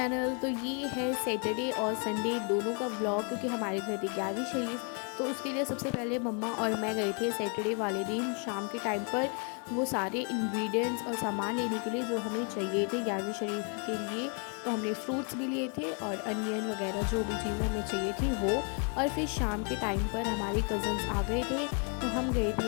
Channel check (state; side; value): quieter; right; 38.4 dB